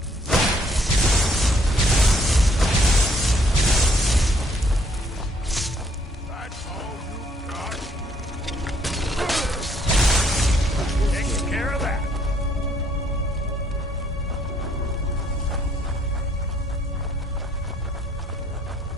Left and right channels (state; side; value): normal; both; correlation 0.66